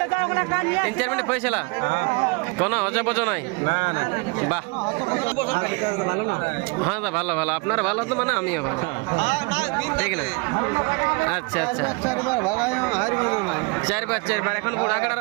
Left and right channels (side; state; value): left; quieter; 29.2 dB